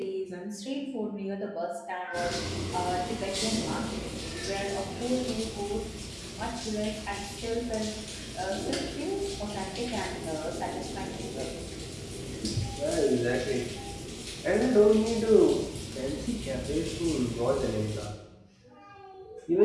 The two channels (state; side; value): identical; both; correlation 1.00